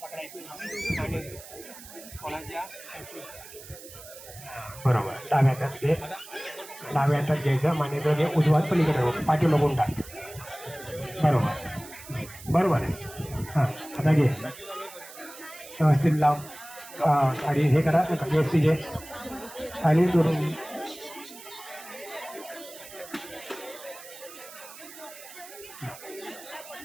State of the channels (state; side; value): noise; right; hiss, 16 dB below the sound